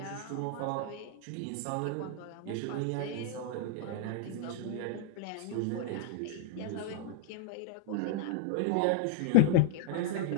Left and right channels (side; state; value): both; different; correlation -0.01